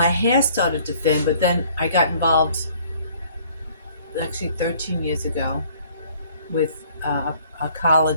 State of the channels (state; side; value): inverted; both; correlation -0.58